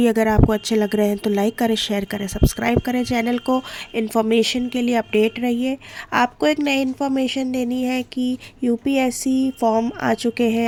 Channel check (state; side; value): identical; both; correlation 1.00